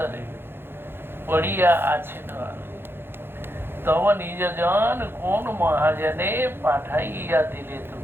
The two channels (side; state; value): left; late; 0.11 ms